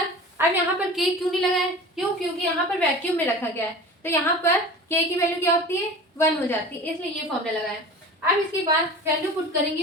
अब यहाँ पर K क्यों नहीं लगाया, क्यों, क्योंकि यहाँ पर वैक्यूम में रखा गया है, तो यहाँ पर K की वैल्यू क्या होती है 1 हो जाती है, इसलिए ये फॉर्मूला लगाया। अब इसके बाद वैल्यू पुट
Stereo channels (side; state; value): both; normal; correlation 0.36